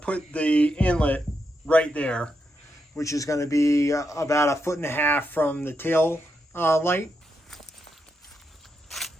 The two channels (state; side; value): normal; both; correlation 0.83